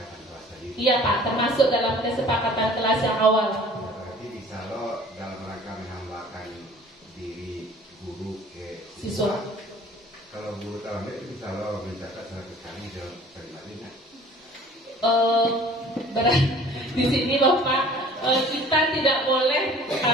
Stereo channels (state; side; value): normal; both; correlation 0.49